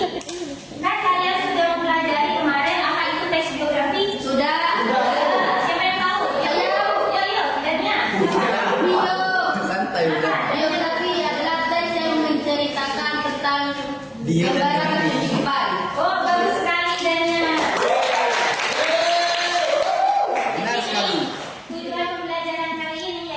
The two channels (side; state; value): both; identical; correlation 1.00